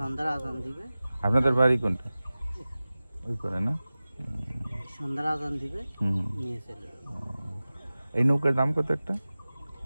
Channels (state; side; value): inverted; both; correlation -0.97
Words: আজান দিবে। আপনাদের বাড়ি কোনটা? ওই করে না? সন্ধ্যার আজান দিবে, নিয়ে চলে যাবে। এই নৌকার দাম কত একটা?